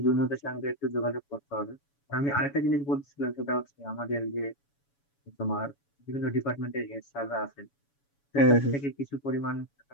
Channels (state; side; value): late; right; 7.1 ms